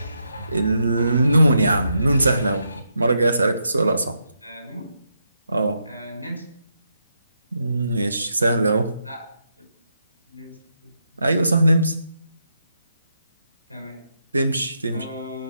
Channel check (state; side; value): inverted; both; correlation -0.81